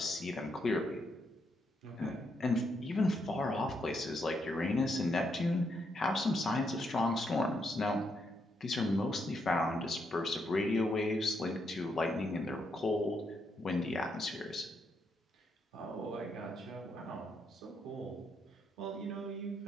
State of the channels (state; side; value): normal; both; correlation 0.78